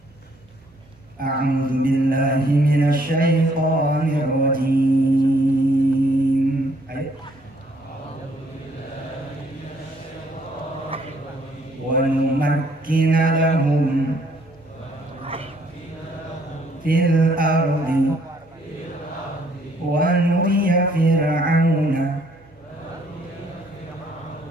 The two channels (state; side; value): noise; right; hum, 30 dB below the sound